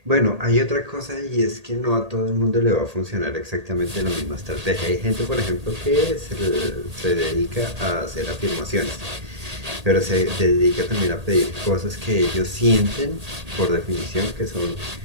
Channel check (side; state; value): left; late; 1.8 ms